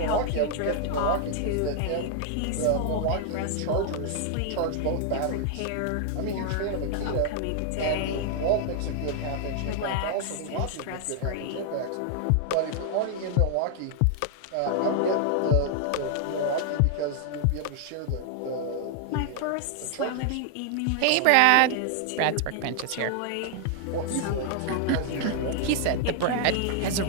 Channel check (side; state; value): both; different; correlation 0.00